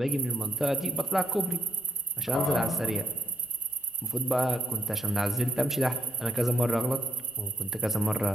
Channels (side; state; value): both; normal; correlation 0.76